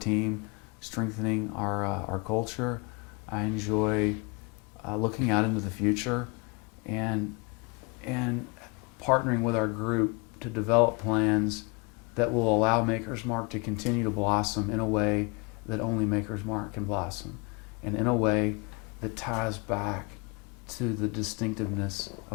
strengthening our culture. I enjoy looking out into the future and partnering with our group to develop plans that will allow Maker's Mark to continue to blossom in a way that only Maker's Mark can blossom, and in a way that ties back to the distinctiveness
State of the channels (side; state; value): right; quieter; 29.5 dB